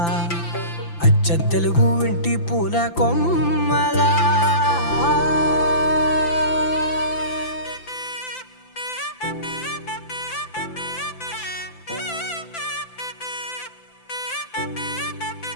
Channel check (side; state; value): right; late; 5.9 ms